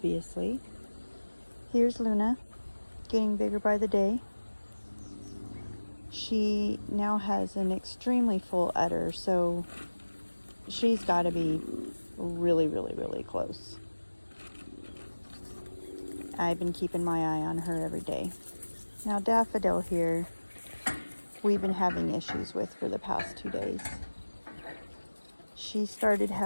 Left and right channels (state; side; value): inverted; both; correlation -1.00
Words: Here's Luna, getting bigger by the day. She now has an extremely full udder, so she's got to be really close. I've been keeping my eye on her every day. Now Daffodil here, we've been having issues with for the past 2 days. She started